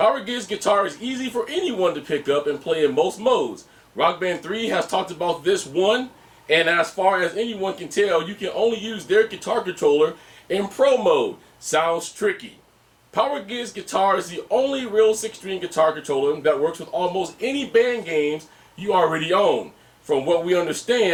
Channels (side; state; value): both; identical; correlation 1.00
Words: Gig's guitar is easy for anyone to pick up and play in most modes. Rock Band 3 has talked about this one, and as far as anyone can tell, you can only use their guitar controller in Pro mode. Sounds tricky. Power Gig's guitar is the only real six-string guitar controller that works with almost any band games you already own. From what we